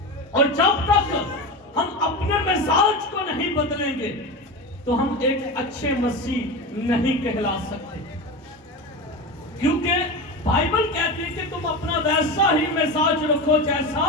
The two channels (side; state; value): both; normal; correlation 0.23